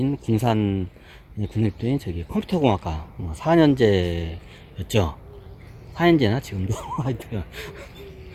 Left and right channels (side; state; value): both; identical; correlation 1.00